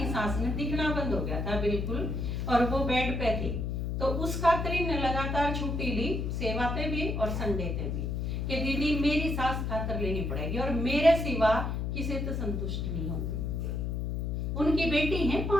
सास ने दिखना बंद हो गया था बिल्कुल और वो बेड पे थी। तो उस खातिर इन्हें लगातार छुट्टी ली, सेवा पे भी और संडे पे भी, कि दीदी मेरी सास खातर लेनी पड़ेगी और मेरे सिवा किसी तो संतुष्ट नहीं होगी। उनकी बेटी है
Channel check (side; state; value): left; noise; hum, 1 dB below the sound